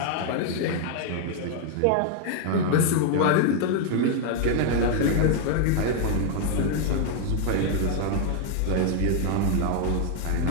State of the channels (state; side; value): different; both; correlation 0.00